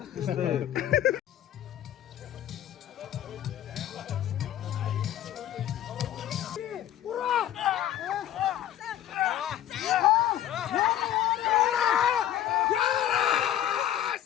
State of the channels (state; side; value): quieter; right; 11.5 dB